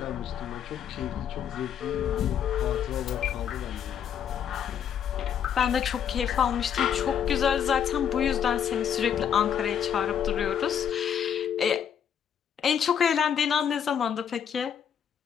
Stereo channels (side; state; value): right; quieter; 8.4 dB